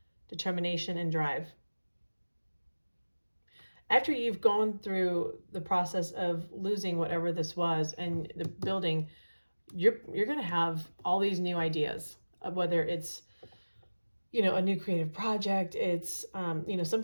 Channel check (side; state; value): both; inverted; correlation -1.00